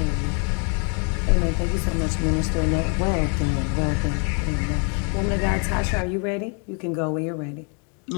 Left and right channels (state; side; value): quieter; right; 38.4 dB